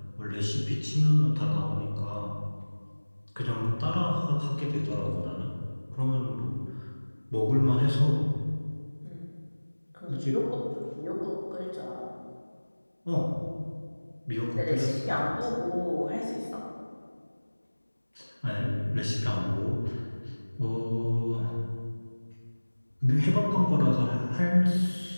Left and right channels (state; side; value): inverted; both; correlation -1.00